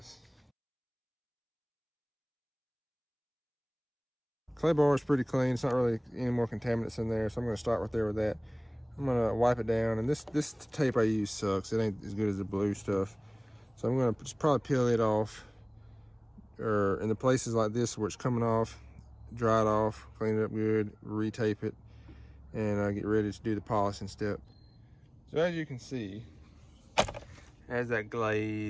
Clay bar is pretty clean. It's not really any more contaminants in there, so I'm gonna start right there with that. I'm gonna wipe it down, and this tape I use sucks. It ain't as good as the blue stuff. So I'm gonna just probably peel it off, or in the places like this where it's coming off, dry it off, clean it up good, retape it, and get ready to do the polishing step. So as you can see, it has that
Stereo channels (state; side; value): identical; both; correlation 1.00